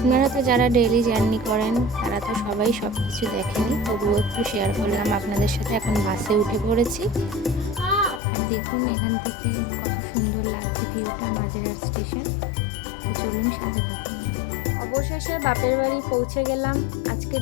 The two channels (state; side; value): drops out; right; at 8.2 s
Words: তো যারা ডেইলি জার্নি করেন তারা তো সবাই সব কিছু দেখেনি, তবুও একটু শেয়ার করলাম আপনাদের সাথে। এখন বাসে উঠে পড়েছি। দেখুন এখান থেকে কত সুন্দর লাগছে ভিউটা, মাঝেরহাট স্টেশন। তো চলুন সাথে থাকুন। অবশেষে বাপের বাড়ি পৌঁছে গেলাম। আজকের